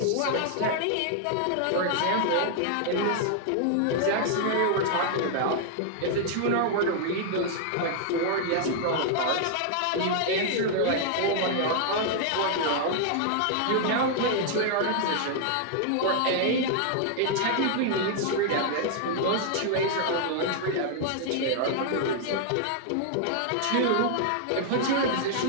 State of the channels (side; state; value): both; different; correlation -0.01